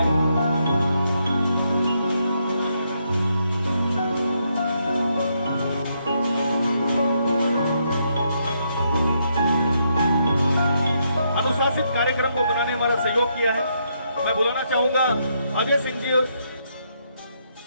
अनुशासित कार्यक्रम को बनाने में हमारा सहयोग किया है। मैं बुलाना चाहूंगा अजय सिंह जी।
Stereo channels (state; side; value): inverted; both; correlation -0.77